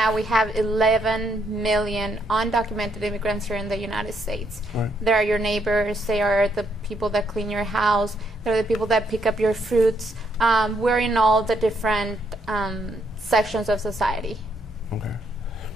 we have 11 million undocumented immigrants here in the United States. Right. They are your neighbors. They are the people that clean your house. They're the people that pick up your fruits. We're in all the different sections of society. Okay.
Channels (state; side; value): normal; both; correlation 0.74